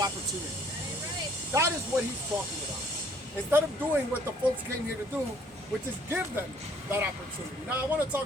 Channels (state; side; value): normal; both; correlation 0.60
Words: That is what he's talking about. Instead of doing what the folks came here to do, which is give them that opportunity. Now I want to